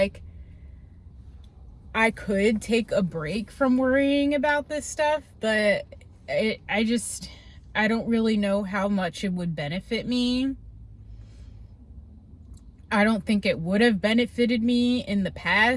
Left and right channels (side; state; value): both; identical; correlation 1.00